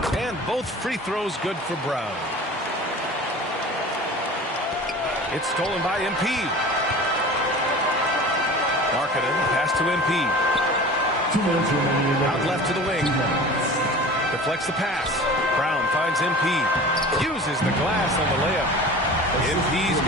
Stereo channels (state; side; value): normal; both; correlation 0.39